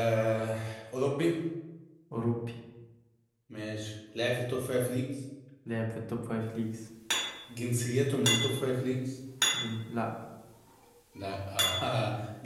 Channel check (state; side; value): identical; both; correlation 1.00